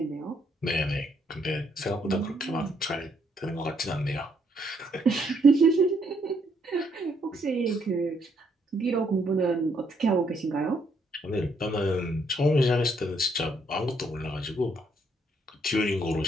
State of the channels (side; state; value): both; normal; correlation 0.71